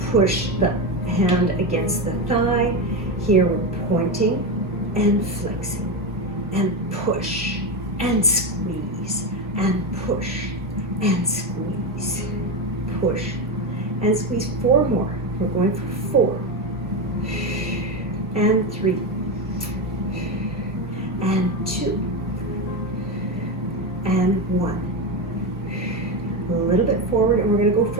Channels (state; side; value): normal; both; correlation 0.15